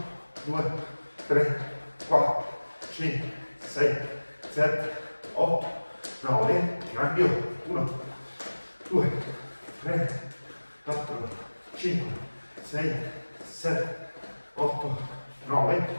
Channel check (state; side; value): inverted; both; correlation -1.00